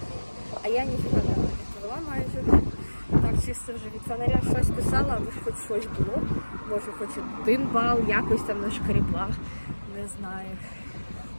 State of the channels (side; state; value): both; inverted; correlation -1.00